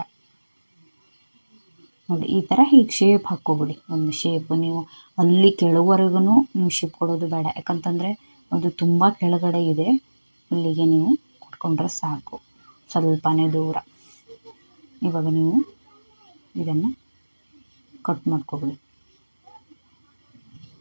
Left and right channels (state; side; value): inverted; both; correlation -1.00